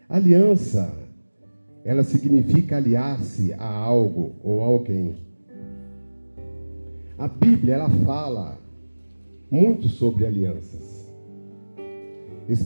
Aliança, ela significa aliar-se a algo ou a alguém. A Bíblia, ela fala muito sobre alianças,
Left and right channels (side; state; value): both; inverted; correlation -1.00